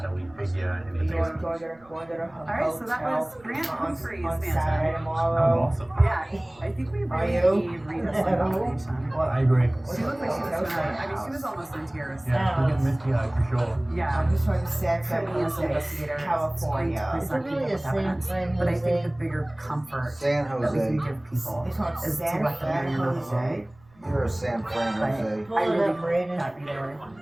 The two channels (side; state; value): right; noise; rumble, 28 dB below the sound